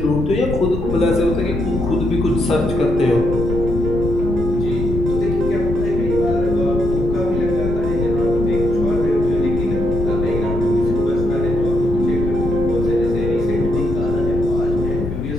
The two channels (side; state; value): left; noise; rumble, 4 dB below the sound